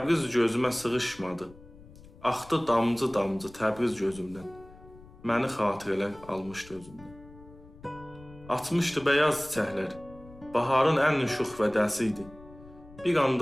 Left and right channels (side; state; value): left; noise; rumble, 21 dB below the sound